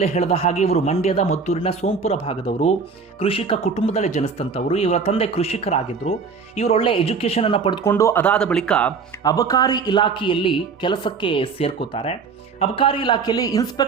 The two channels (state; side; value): quieter; left; 5.2 dB